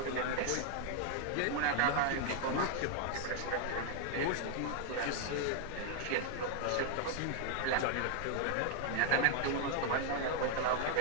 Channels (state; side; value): different; both; correlation 0.00